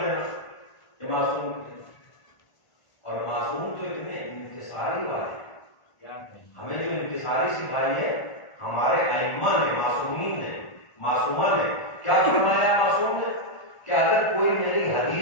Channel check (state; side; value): late; right; 1.4 ms